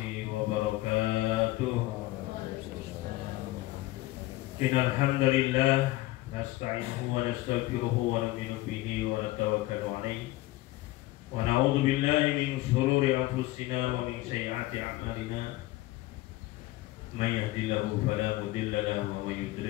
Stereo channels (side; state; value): right; quieter; 18.1 dB